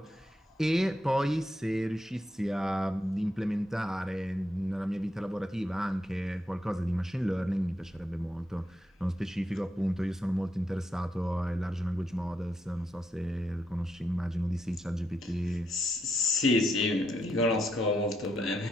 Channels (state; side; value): normal; both; correlation 0.80